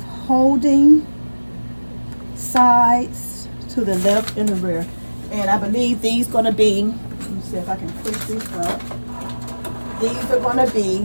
holding sides to the left and the rear. And I believe these gonna be, let me see if I can push this up. These are gonna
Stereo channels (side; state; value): both; inverted; correlation -1.00